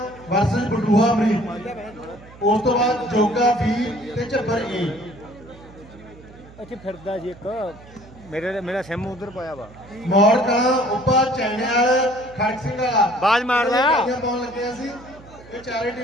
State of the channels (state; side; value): noise; right; hum, 21 dB below the sound